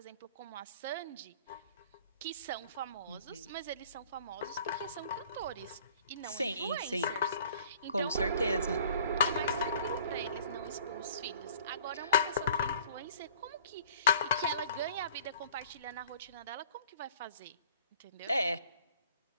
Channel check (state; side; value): inverted; both; correlation -0.51